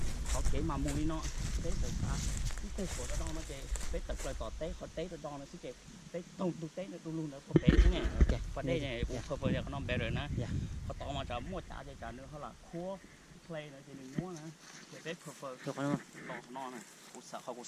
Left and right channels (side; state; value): both; identical; correlation 1.00